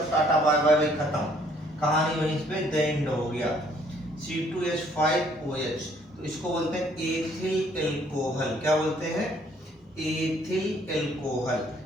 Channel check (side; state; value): both; normal; correlation 0.63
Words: टाटा बाय बाय भाई, खत्म, कहानी वहीं पे द एंड हो गया। C2H5OH, तो इसको बोलते हैं एथिल एल्कोहल। क्या बोलते हैं? Ethyl alcohol.